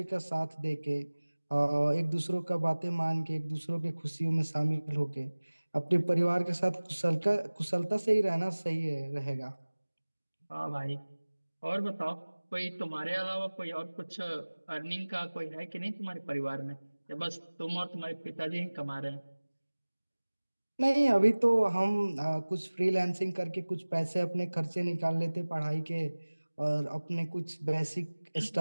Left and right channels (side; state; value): both; inverted; correlation -1.00